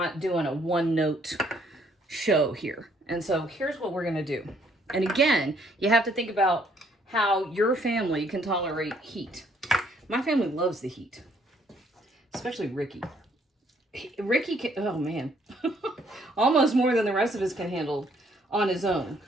doing a one-note show here. And so here's what we're going to do. And again, you have to think about how your family can tolerate heat. My family loves the heat, especially Ricky. Ricky can, oh man, almost more than the rest of us can handle on his own,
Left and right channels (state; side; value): normal; both; correlation 0.66